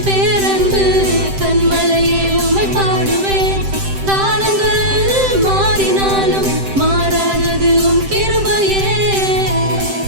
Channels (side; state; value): left; late; 7.7 ms